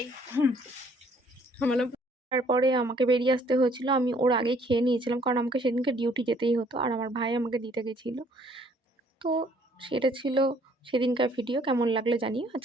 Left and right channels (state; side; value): normal; both; correlation 0.61